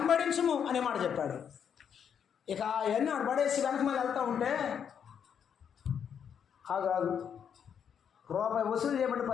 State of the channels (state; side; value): quieter; right; 7.9 dB